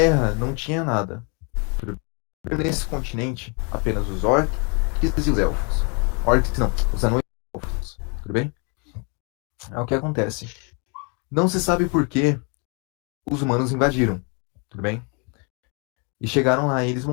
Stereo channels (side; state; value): right; quieter; 34.7 dB